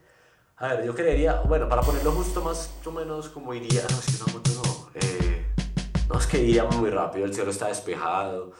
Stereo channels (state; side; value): identical; both; correlation 1.00